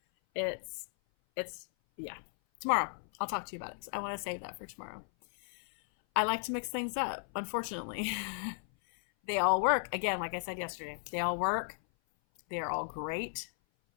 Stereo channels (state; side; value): silent; right; 54 dB below the other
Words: it's yeah. Tomorrow, I'll talk to you about it. I want to save that for tomorrow. I like to mix things up, unfortunately. They all work. Again, like I said yesterday, they all work. They are all great,